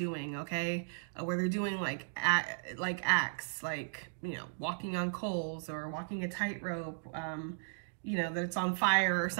okay? Where they're doing like acts, like, you know, walking on coals or walking a tightrope, you know, that's on fire or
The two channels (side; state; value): left; silent; digital silence